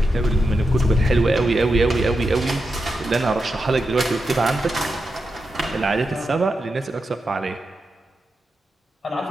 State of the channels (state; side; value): normal; both; correlation 0.88